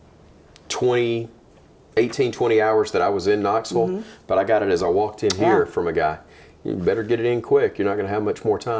18, 20 hours that I was in Knoxville, but I got it as I walked in here from a guy. You better get it in quick. You're not going to have much more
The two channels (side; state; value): both; identical; correlation 1.00